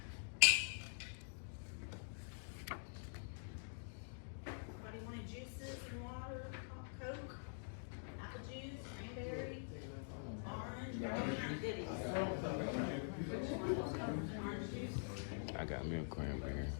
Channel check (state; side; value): silent; right; digital silence